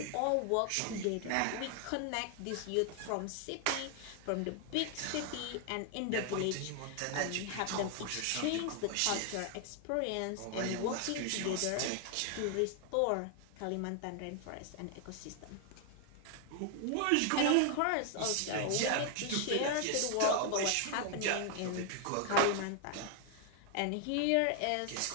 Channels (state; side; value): different; both; correlation 0.00